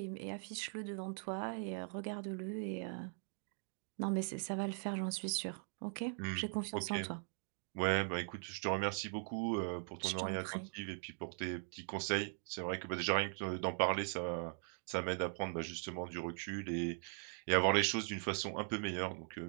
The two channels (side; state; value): left; silent; 51 dB below the other